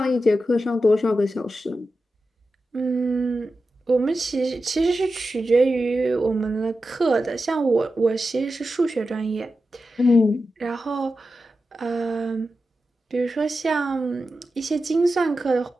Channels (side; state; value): both; normal; correlation 0.91